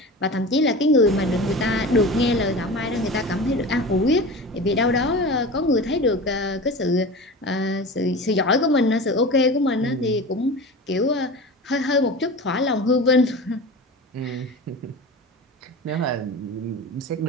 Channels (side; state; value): both; normal; correlation 0.32